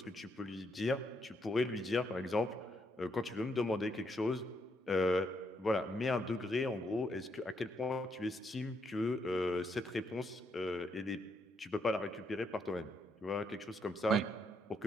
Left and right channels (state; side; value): normal; both; correlation 0.76